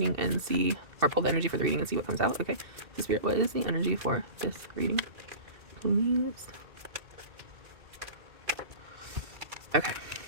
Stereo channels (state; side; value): late; left; 2.6 ms